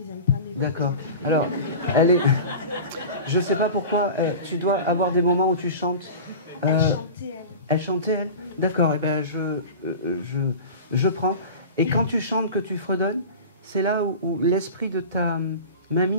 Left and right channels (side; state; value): both; inverted; correlation -0.33